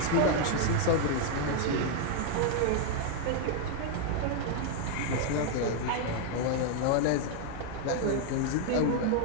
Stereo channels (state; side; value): different; both; correlation 0.00